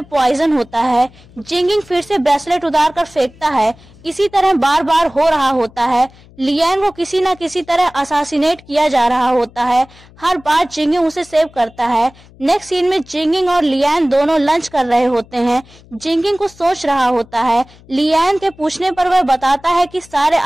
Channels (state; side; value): noise; left; hum, 25 dB below the sound